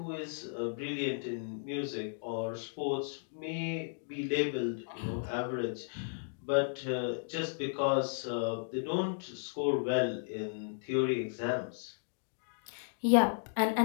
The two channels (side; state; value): right; silent; digital silence